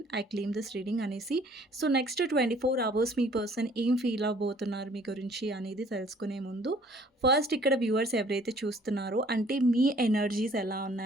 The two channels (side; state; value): both; normal; correlation 0.57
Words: I claim this reading అనేసి. సో, నెక్స్ట్ 24 అవర్స్ మీ పర్సన్ ఏం ఫీల్ అవ్వబోతున్నారు మీ గురించి అనేది తెలుసుకునే ముందు ఫస్ట్ ఇక్కడ వ్యూవర్స్ ఎవరైతే చూస్తున్నారో అంటే మీ ఎనర్జీస్ ఎలా